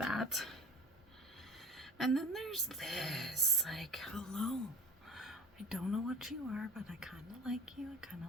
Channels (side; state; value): both; normal; correlation 0.39